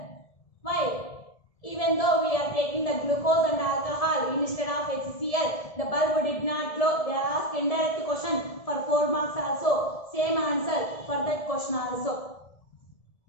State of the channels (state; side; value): late; right; 1.7 ms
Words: Why? Even though we are taking the glucose and alcohol instead of HCl, the bulb did not glow. They are asked indirect question for 4 marks also. Same answer for that question also.